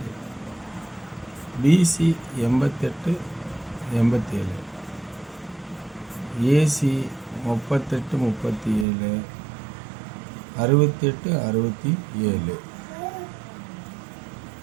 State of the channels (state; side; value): drops out; left; at 8.8 s